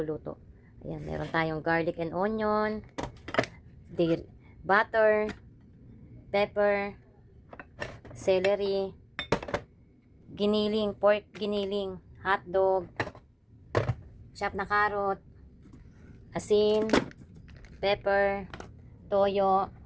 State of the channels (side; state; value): both; identical; correlation 1.00